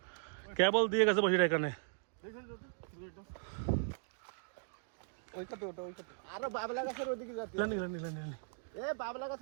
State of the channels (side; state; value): left; silent; digital silence